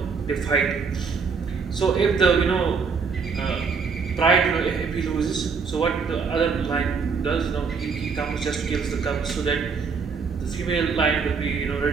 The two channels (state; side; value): quieter; left; 5.4 dB